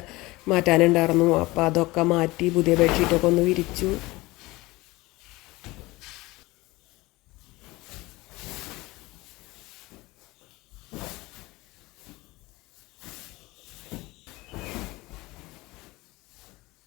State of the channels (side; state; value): right; quieter; 21.1 dB